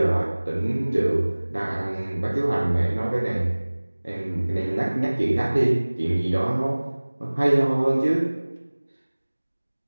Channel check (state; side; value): inverted; both; correlation -1.00